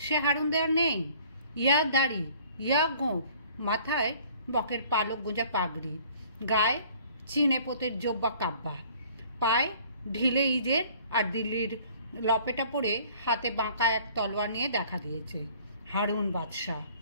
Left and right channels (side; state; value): both; inverted; correlation -0.53